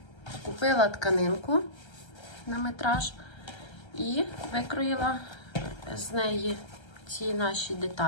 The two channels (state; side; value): late; right; 1.3 ms